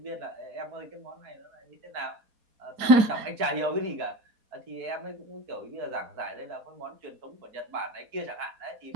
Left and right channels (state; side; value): late; left; 4.2 ms